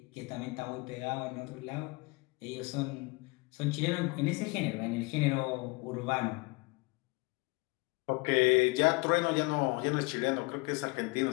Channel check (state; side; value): quieter; right; 26.6 dB